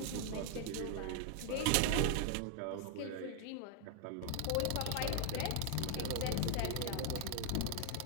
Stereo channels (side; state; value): both; different; correlation 0.00